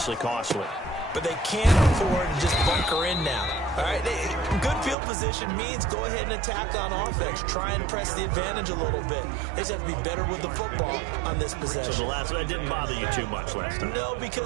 costly. But they can't afford to just bunker in now. All right, good field position means go ahead and attack on offense. Try and press the advantage a little bit. They just have to be better with the football on this possession. So that didn't bother you too much last time? No,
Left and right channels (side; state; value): left; drops out; at 5.0 s